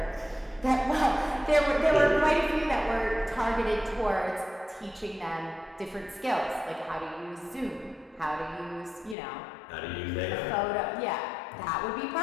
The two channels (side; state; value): right; drops out; at 9.2 s